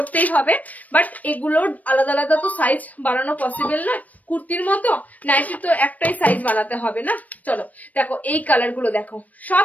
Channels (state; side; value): late; right; 0.074 ms